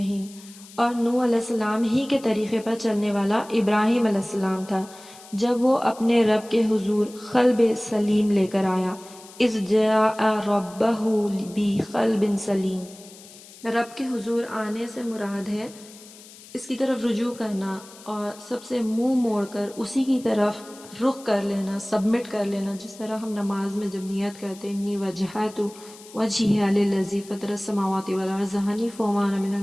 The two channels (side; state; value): left; noise; hiss, 20 dB below the sound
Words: اور نوح علیہ السلام ہی کے طریقے پر چلنے والا ابراہیم علیہ السلام تھا جب وہ اپنے رب کے حضور قلب سلیم لے کر آیا۔ اذ جاء ربہ بقلب سلیم، رب کے حضور آنے سے مراد ہے اس کی طرف رجوع کرنا اور سب سے منہ موڑ کر اسی کی طرف رخ کر لینا، سبمٹ کر لینا، جس طرح ہم نماز میں جب نیت کرتے ہیں انی وجہت وجہی للذی فطر السماوات والارض حنیفا وما انا من